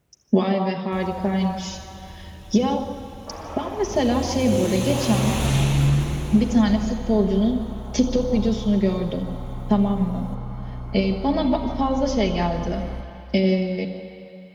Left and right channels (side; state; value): both; identical; correlation 1.00